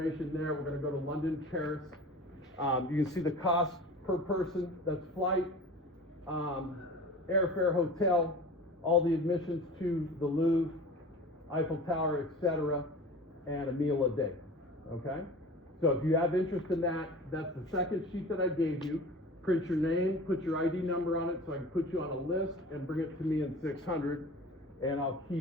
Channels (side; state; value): both; normal; correlation 0.38